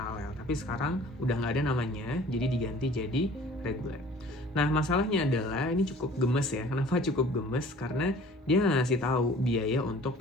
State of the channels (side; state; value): both; normal; correlation 0.49